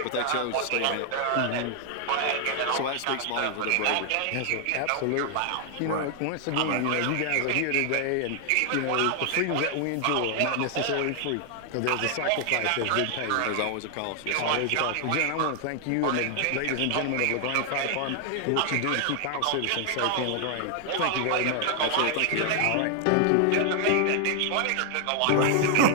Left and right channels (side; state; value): both; different; correlation 0.00